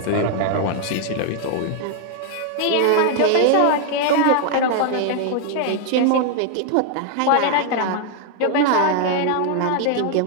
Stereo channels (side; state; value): both; different; correlation 0.00